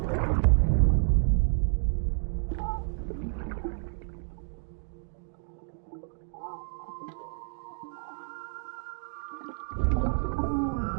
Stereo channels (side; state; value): left; silent; digital silence